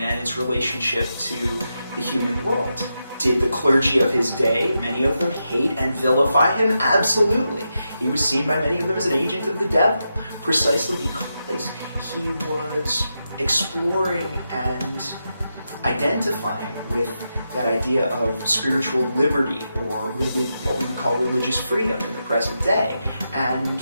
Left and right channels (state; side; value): inverted; both; correlation -0.87